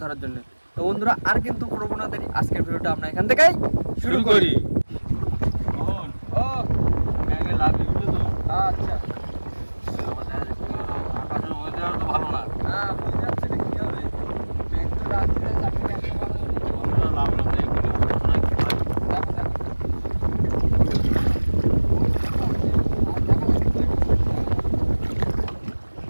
ধরার জন্য। তো বন্ধুরা, আর কিন্তু কোনো না দেরি, আজকের ভিডিওটা আমরা এখান থেকেই শুরু করি। আচ্ছা, ভালো না। হ্যাঁ বুঝে যাচ্ছে না কি হবে। মেঘ তো রাত্রে চাকরি একটা ভালো হলো। দেখো দেখো আর দেখা যাচ্ছে।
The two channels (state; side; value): inverted; both; correlation -1.00